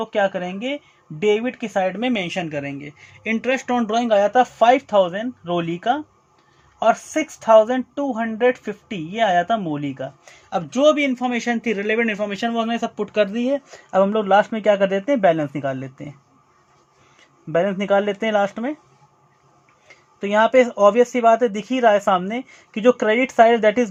क्या करेंगे, डेबिट की साइड में मेंशन करेंगे। इंटरेस्ट ऑन ड्राइंग आया था 5,000 रोली का, और 6,250 ये आया था मोली का। अब जो भी इंफॉर्मेशन थी, रिलेवेंट इंफॉर्मेशन, वो हमने सब पुट कर दी है। अब हम लोग लास्ट में क्या कर देते हैं, बैलेंस निकाल लेते हैं लास्ट में। तो यहाँ पे ऑब्वियस सी बात है, दिख ही रहा है सामने कि जो credit side that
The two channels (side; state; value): both; identical; correlation 1.00